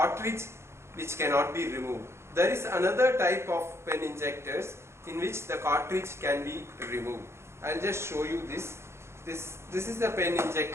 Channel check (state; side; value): late; left; 0.13 ms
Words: which cannot be removed. There is another type of pen injectors in which the cartridge can be removed. I will just show you this. This is the pen